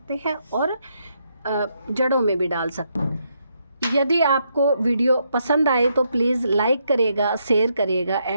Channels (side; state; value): both; inverted; correlation -0.77